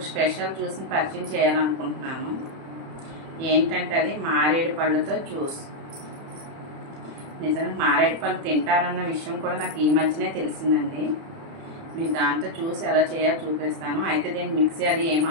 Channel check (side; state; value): left; late; 30 ms